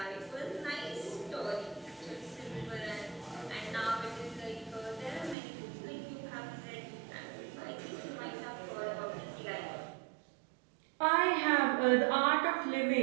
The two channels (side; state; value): left; drops out; at 5.4 s